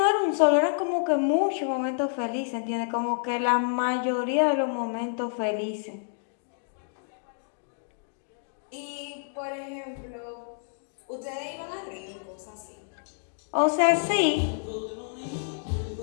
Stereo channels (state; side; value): silent; right; digital silence